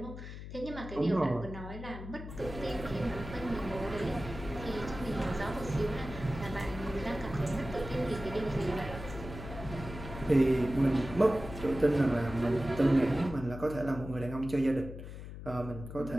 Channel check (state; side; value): noise; left; hum, 10 dB below the sound